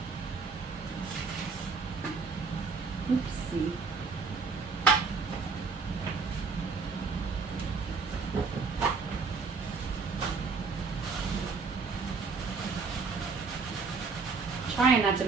Oopsie. Trying not to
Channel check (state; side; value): quieter; left; 4.8 dB